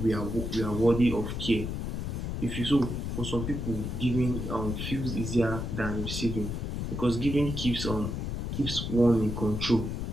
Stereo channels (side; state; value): left; noise; rumble, 3 dB below the sound